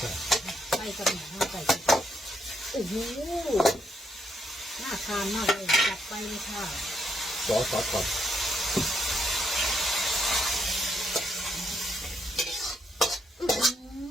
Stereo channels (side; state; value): both; normal; correlation 0.76